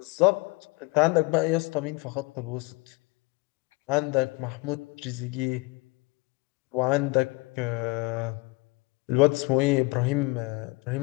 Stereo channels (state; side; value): quieter; right; 26.1 dB